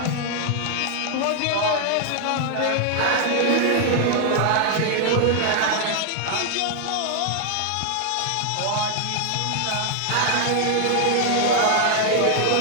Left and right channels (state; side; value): different; both; correlation 0.00